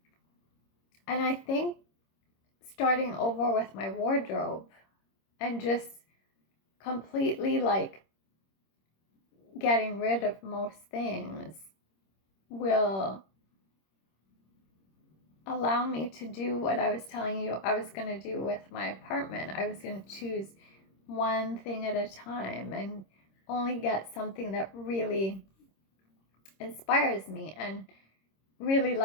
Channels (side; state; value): right; late; 26 ms